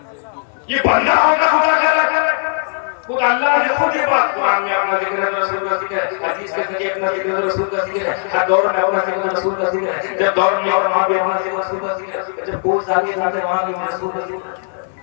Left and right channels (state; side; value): silent; right; 60 dB below the other